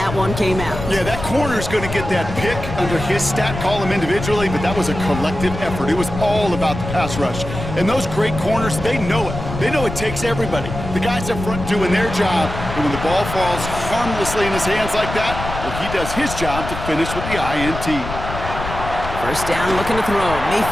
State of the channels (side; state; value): left; noise; rumble, 8 dB below the sound